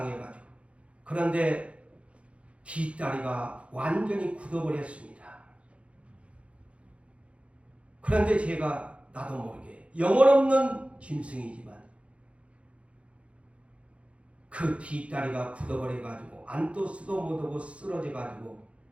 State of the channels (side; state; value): left; late; 0.062 ms